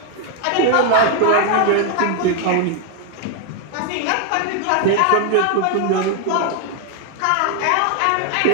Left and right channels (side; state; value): both; different; correlation 0.00